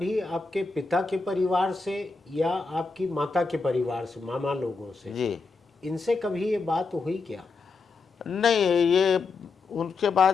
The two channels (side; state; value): right; quieter; 4.2 dB